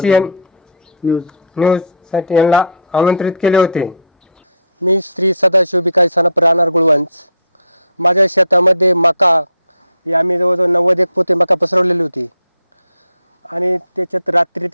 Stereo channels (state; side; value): inverted; both; correlation -0.56